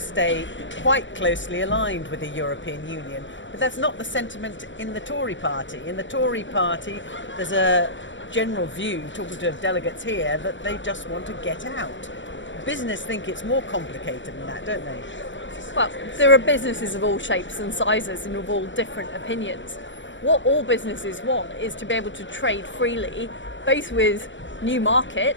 quite closely aligned with the European Union. But that's not the sentiment in the Tory party. In the Tory party, there's a general view, talking to delegates here, that they just want to get out. Business think it's more complicated than that, don't they? Well, there are businesses of all shapes and sizes and of all different opinions. What all businesses want is to be able to trade freely, both with new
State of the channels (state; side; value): late; right; 0.54 ms